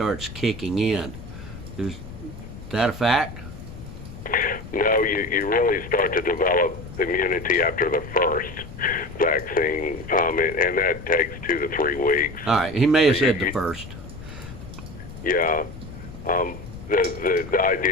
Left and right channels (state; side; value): noise; left; rumble, 13 dB below the sound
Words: kicking in. Is that a fact? No, you really start to develop immunity after the first vaccine, and that takes 2 to 3 weeks. All right, he may have said the first. Yeah. The